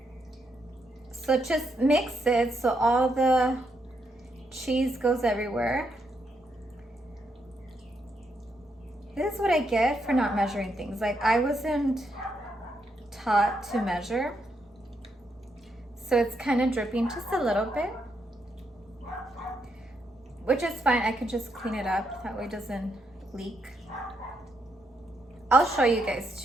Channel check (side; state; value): both; normal; correlation 0.79